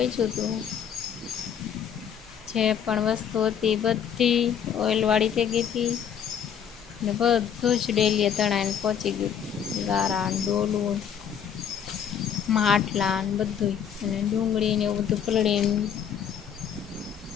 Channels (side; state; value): right; quieter; 8.3 dB